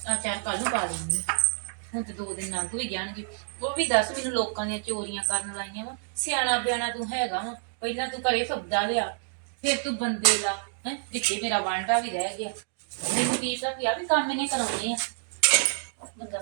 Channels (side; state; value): left; silent; digital silence